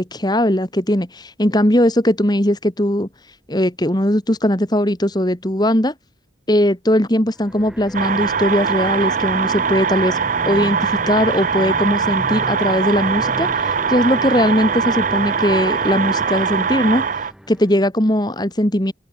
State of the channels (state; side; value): normal; both; correlation 0.49